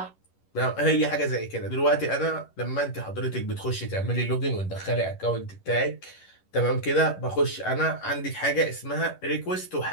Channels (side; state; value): right; late; 11 ms